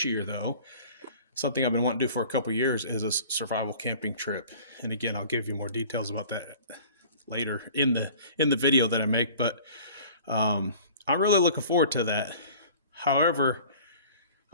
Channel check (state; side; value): inverted; both; correlation -0.46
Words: year, though, something I've been wanting to do for a couple years is a survival camping trip. And again, I'll give you more details about that later in the video that I make. But I'm really looking forward to that. However,